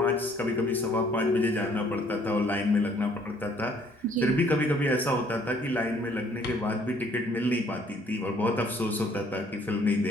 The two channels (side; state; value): both; normal; correlation 0.61